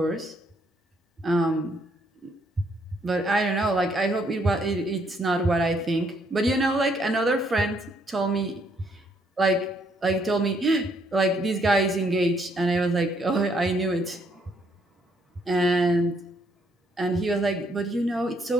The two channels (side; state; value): both; normal; correlation 0.70